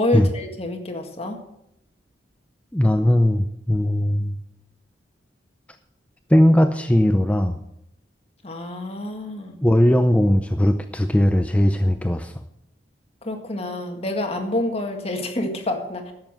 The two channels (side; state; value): both; normal; correlation 0.92